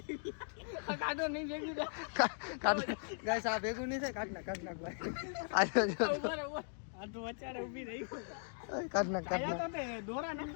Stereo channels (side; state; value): right; silent; digital silence